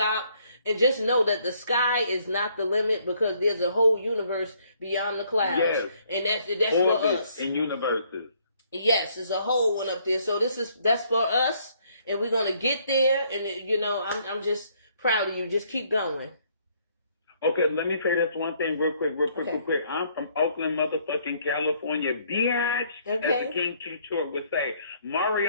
And just know that the sky is not the limit because there's a whole universe beyond the clouds. Yes. And that's for us. In universes. Yes, there's a whole one up there. So that's for us, and we're gonna get there. And I'm just proud of you. Just keep going. Okay, let me say this one thing real quick. Okay. Real quick. I'm from Oakland, motherfucking California, bitch. As Okay. the King Q Short would say.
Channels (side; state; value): both; inverted; correlation -0.66